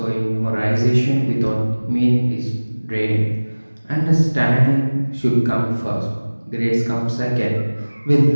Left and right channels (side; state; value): both; inverted; correlation -1.00